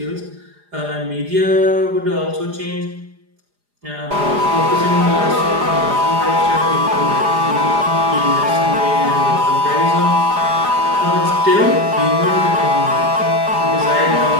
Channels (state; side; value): late; left; 4.9 ms